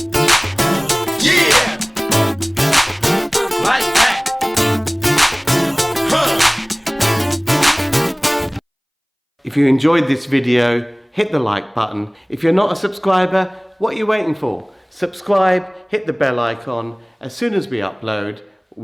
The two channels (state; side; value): identical; both; correlation 1.00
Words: If you enjoyed this video, hit the like button. If you're not a subscriber, what are you waiting for? Subscribe, hit the bell icon. As soon as we upload,